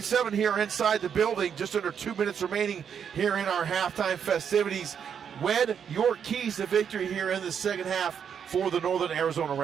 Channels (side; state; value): left; quieter; 7.7 dB